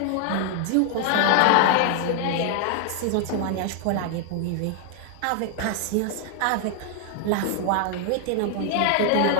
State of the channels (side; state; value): both; different; correlation 0.00